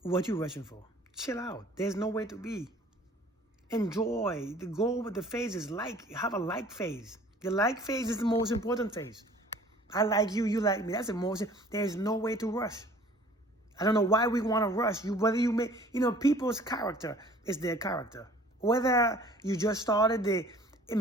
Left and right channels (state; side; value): normal; both; correlation 0.51